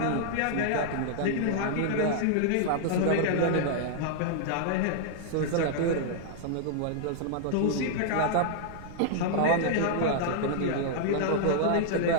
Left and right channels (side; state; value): both; different; correlation -0.01